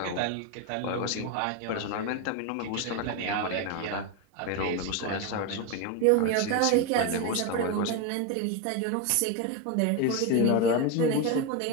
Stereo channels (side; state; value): both; different; correlation 0.03